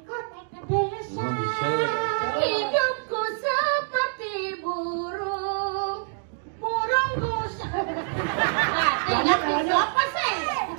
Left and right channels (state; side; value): silent; left; digital silence